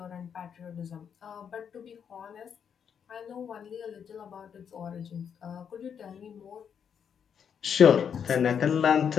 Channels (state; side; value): quieter; right; 7.6 dB